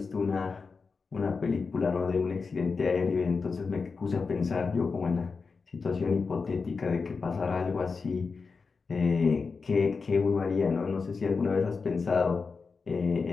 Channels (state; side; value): quieter; right; 4.8 dB